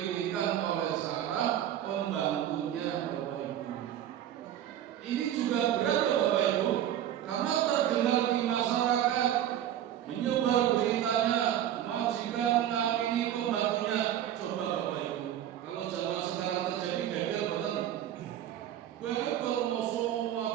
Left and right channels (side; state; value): left; quieter; 11.1 dB